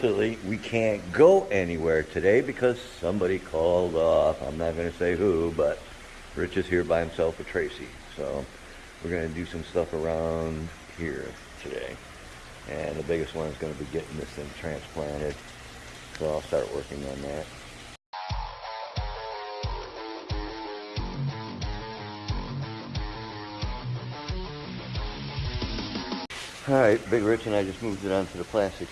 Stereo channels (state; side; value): identical; both; correlation 1.00